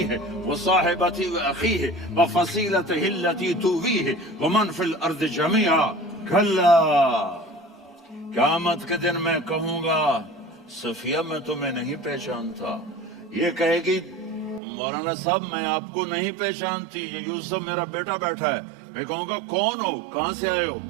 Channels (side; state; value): left; drops out; at 14.6 s